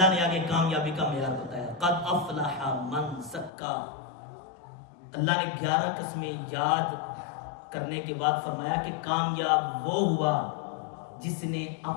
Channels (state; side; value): drops out; right; at 3.5 s